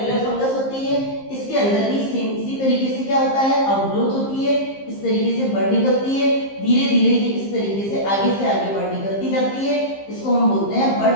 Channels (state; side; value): late; right; 15 ms